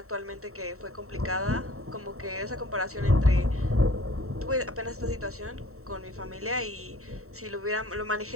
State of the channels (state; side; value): late; left; 0.64 ms